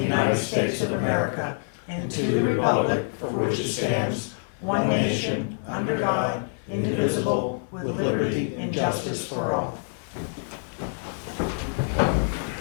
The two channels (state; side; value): silent; right; digital silence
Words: States of America and to the republic for which it stands, one nation, under God, indivisible, with liberty and justice for all.